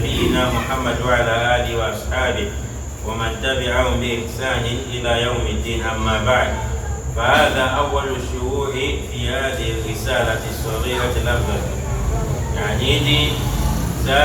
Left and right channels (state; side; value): identical; both; correlation 1.00